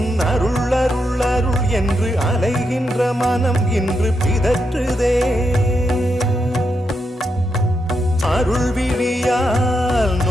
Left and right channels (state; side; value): normal; both; correlation 0.83